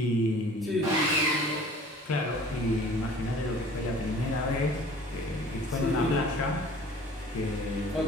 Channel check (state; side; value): normal; both; correlation 0.48